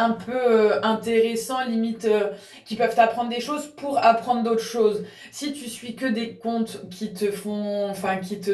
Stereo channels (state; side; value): identical; both; correlation 1.00